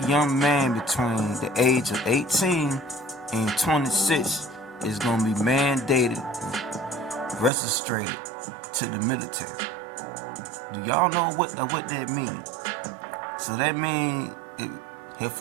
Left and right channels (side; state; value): left; drops out; at 7.5 s